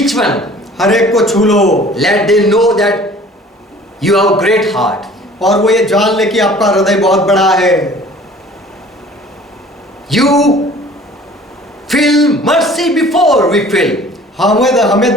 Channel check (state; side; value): normal; both; correlation 0.49